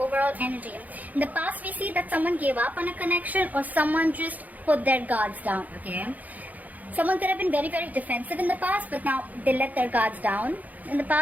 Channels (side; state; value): left; late; 0.079 ms